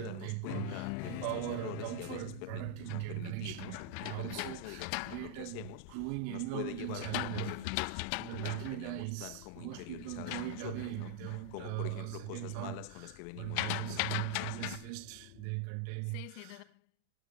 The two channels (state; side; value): different; both; correlation 0.00